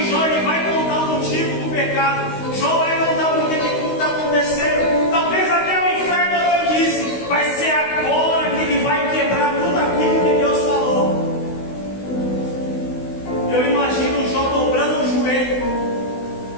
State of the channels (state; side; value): late; right; 16 ms